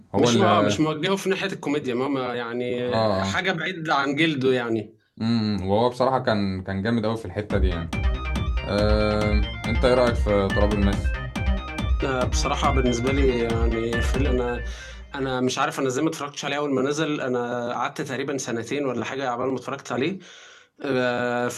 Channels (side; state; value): both; identical; correlation 1.00